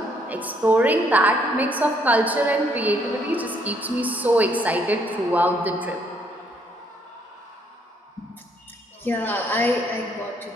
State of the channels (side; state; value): both; normal; correlation 0.69